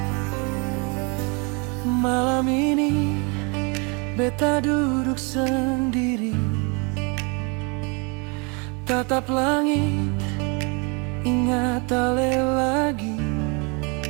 Malam ini beta duduk sendiri, tatap langit, ingat ale lagi.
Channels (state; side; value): quieter; left; 32.3 dB